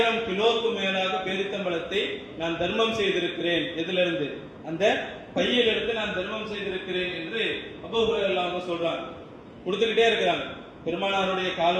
கிலோக்கு மேலாக பேரித்தம்பழத்தை நான் தர்மம் செய்திருக்கிறேன். எதுல இருந்து? அந்த பையிலிருந்து நான் தர்மம் செய்திருக்கிறேன் என்று அபூ ஹுரைரா சொல்றாங்க. கொடுத்துக்கிட்டே இருக்கிறாங்க. பெருமானாருடைய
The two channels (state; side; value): identical; both; correlation 1.00